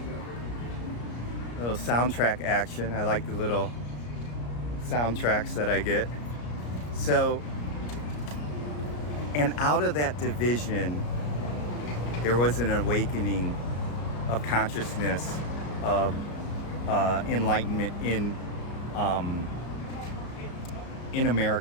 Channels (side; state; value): right; late; 34 ms